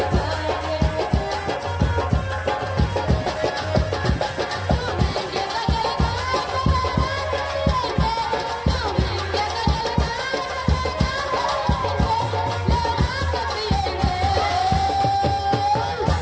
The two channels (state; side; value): identical; both; correlation 1.00